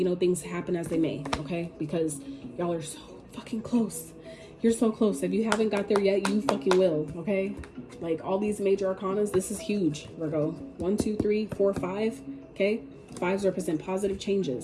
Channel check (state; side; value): identical; both; correlation 1.00